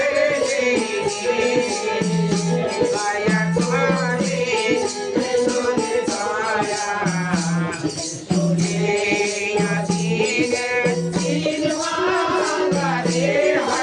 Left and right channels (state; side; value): identical; both; correlation 1.00